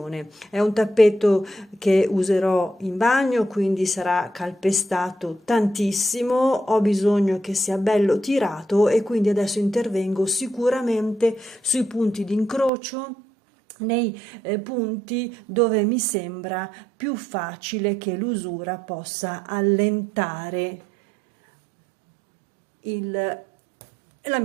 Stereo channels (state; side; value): drops out; left; at 12.7 s